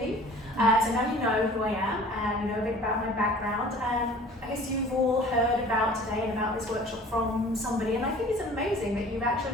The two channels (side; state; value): both; normal; correlation 0.47